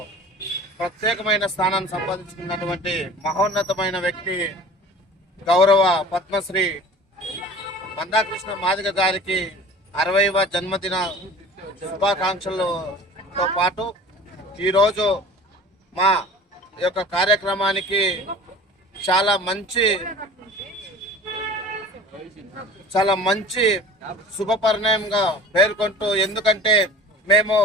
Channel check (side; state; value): both; normal; correlation 0.42